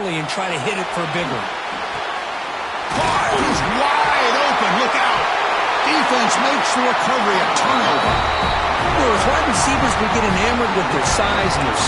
and try to hit it for a big one. He's wide open. Look out. Defense makes the recovery a turnover. Well, as wide receivers, we get enamored with their size and their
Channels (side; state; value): both; identical; correlation 1.00